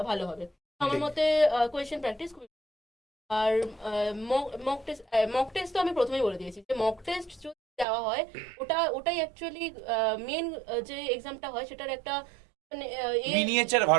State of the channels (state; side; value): drops out; left; at 7.9 s